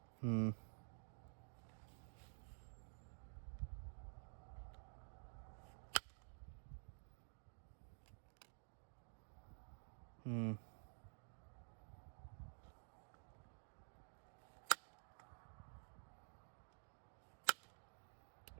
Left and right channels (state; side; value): silent; left; digital silence